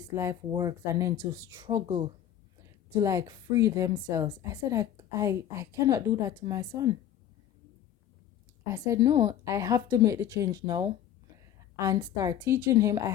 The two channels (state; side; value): quieter; right; 10.8 dB